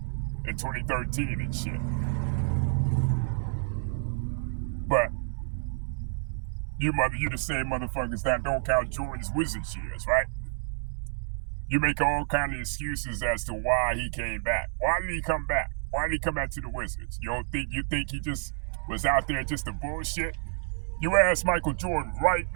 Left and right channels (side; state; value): left; silent; 58 dB below the other